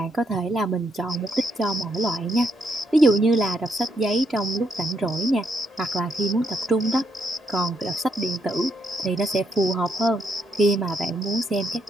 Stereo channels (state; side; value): normal; both; correlation 0.75